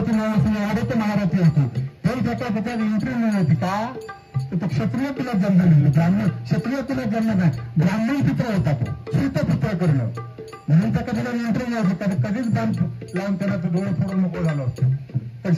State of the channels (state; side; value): identical; both; correlation 1.00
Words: नावाची आडत महारथी होती. ते त्याच्यात एंट्री मिळली होती का? तो क्षत्रिय तुला जन्म दिली, ब्राह्मण क्षत्रिय तुला जन्म नाही, ब्राह्मण पुत्र होता तो, सूत पुत्र करणं म्हणून त्या कधीला एंट्री नाही होती. कधीच बांध लावून त्याला तो डोळे फोडून मोकळ झालं होतं. पण